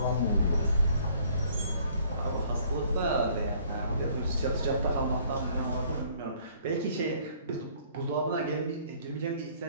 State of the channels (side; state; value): both; inverted; correlation -0.59